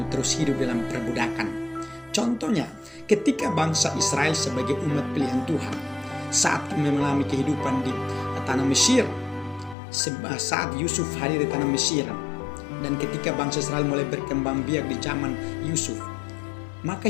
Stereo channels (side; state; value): right; drops out; at 9.8 s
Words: terus hidup dalam perbudakan. Contohnya, ketika bangsa Israel sebagai umat pilihan Tuhan saat mengalami kehidupan di tanah Mesir, saat Yusuf hadir di tanah Mesir, dan ketika bangsa Israel mulai berkembang biak di zaman Yusuf,